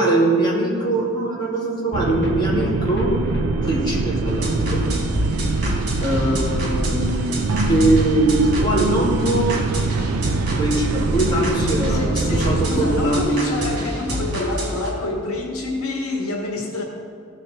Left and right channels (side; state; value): both; normal; correlation 0.54